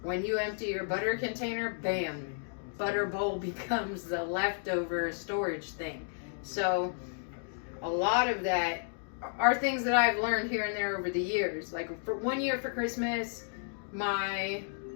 when you empty your butter container, bam, butter bowl becomes the leftover storage thing. So a lot of that are things that I've learned here and there over the years. Like for one year for Christmas, my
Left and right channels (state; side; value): silent; right; digital silence